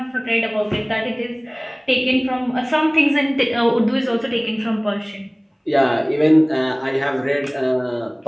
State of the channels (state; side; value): identical; both; correlation 1.00